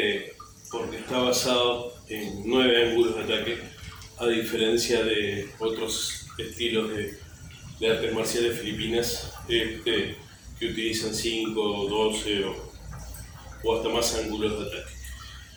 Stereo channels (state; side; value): identical; both; correlation 1.00